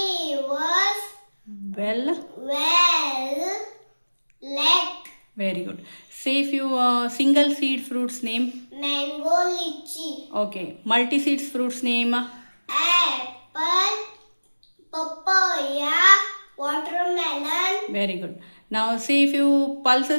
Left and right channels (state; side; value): inverted; both; correlation -1.00